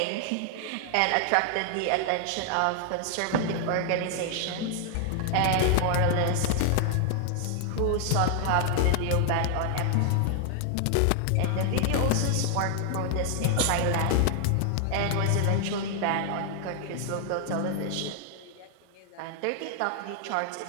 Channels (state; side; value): different; both; correlation 0.00